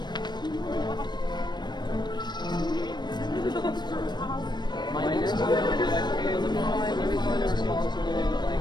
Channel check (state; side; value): late; right; 0.21 ms